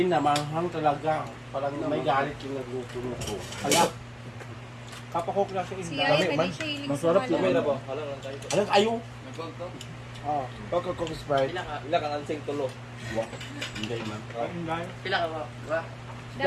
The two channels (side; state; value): both; identical; correlation 1.00